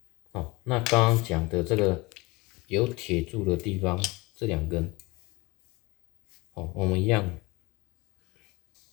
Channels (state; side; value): quieter; right; 23.0 dB